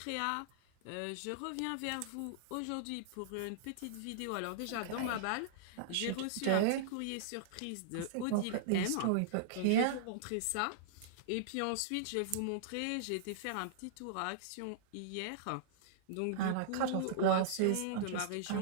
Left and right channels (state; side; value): different; both; correlation -0.02